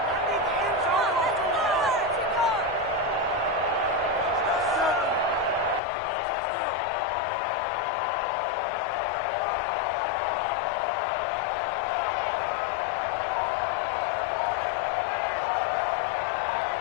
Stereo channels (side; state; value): right; drops out; at 5.8 s